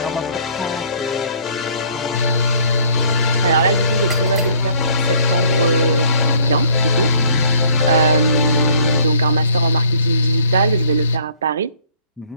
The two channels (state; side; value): inverted; both; correlation -0.60